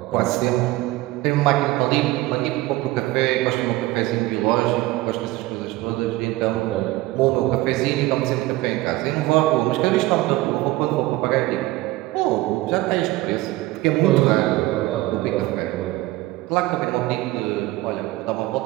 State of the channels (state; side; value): quieter; left; 18.3 dB